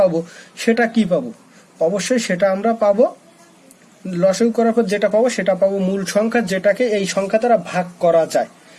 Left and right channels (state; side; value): identical; both; correlation 1.00